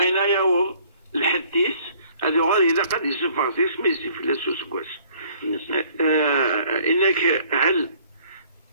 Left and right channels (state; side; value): inverted; both; correlation -0.58